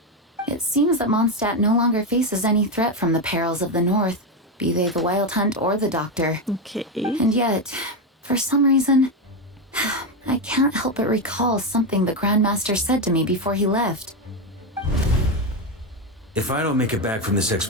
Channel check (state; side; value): normal; both; correlation 0.10